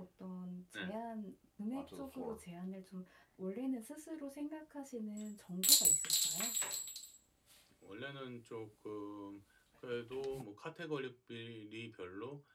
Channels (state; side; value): identical; both; correlation 1.00